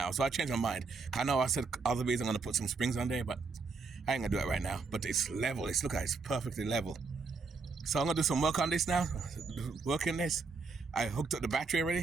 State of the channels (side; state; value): left; quieter; 4.4 dB